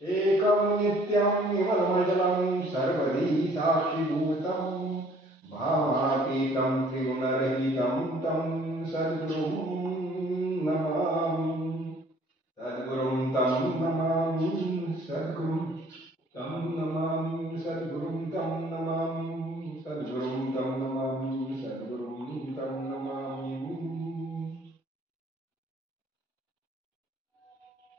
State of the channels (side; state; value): both; normal; correlation 0.57